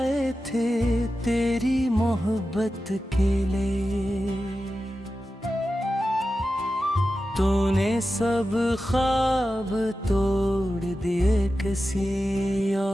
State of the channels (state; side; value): normal; both; correlation 0.92